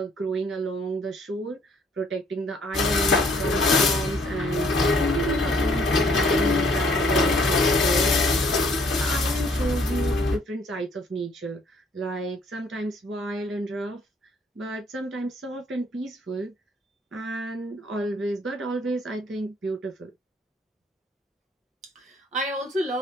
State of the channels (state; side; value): normal; both; correlation 0.62